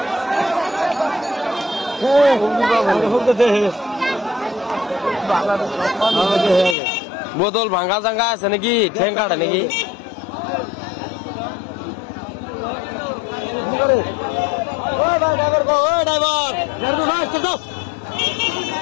বোতল ভাঙ্গা জাঙ্গা আছে নাকি ঠেং কাটে নাকি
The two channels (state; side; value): drops out; right; at 6.8 s